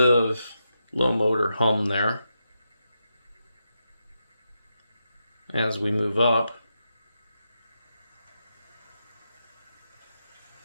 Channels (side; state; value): both; inverted; correlation -0.86